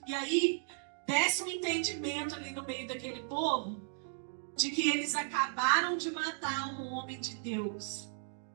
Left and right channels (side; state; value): left; silent; digital silence